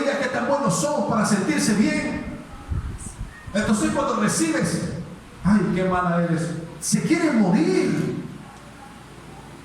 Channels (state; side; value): identical; both; correlation 1.00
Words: que tan buenos son para sentirse bien. Entonces cuando recibes, ay, qué mala eres, se quiere morir.